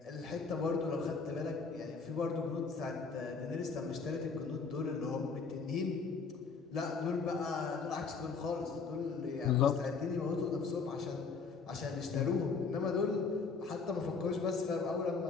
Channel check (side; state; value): right; quieter; 4.9 dB